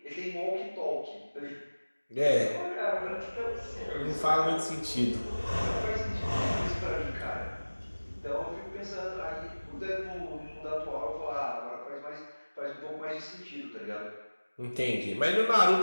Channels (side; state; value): both; inverted; correlation -1.00